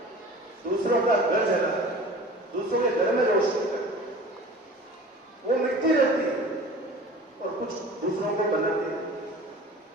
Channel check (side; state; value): both; normal; correlation 0.41